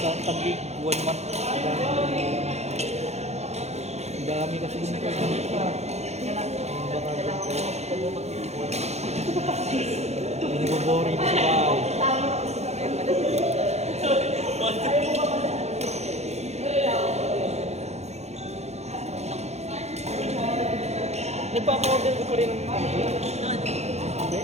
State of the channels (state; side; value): late; left; 0.32 ms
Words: tagig, 1 month. Ang dami kasi yung internet ko. Baka ganito. Hindi ko boring sa bahay. Nagpapa-order ko pa rin ng